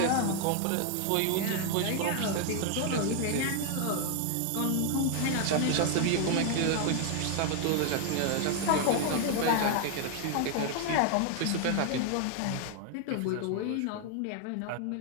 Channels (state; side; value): different; both; correlation 0.01